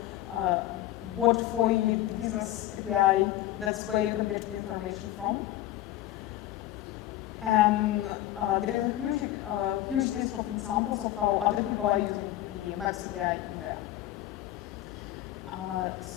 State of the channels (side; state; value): right; quieter; 14.2 dB